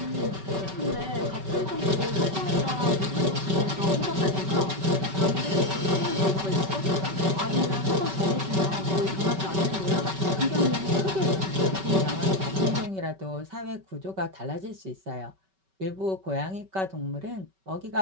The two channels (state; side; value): late; left; 5.2 ms